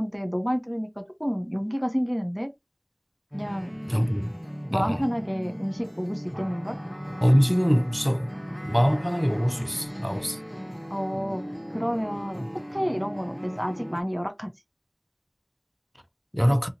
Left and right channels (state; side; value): identical; both; correlation 1.00